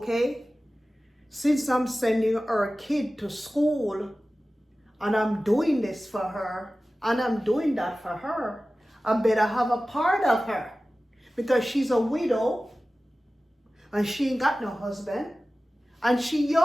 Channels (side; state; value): both; normal; correlation 0.96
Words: since I'm sending our kid to school and I'm doing this for her and I'm doing that for her, I better have a part of her because she's a widow and she ain't got no husband and she